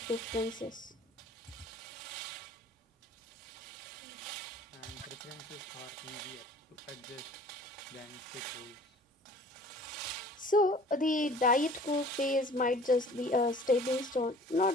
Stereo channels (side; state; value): both; normal; correlation 0.48